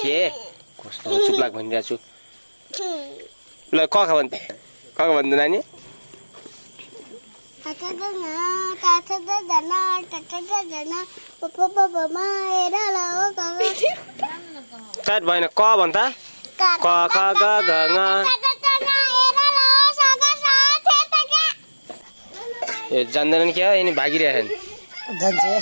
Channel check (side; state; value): both; inverted; correlation -1.00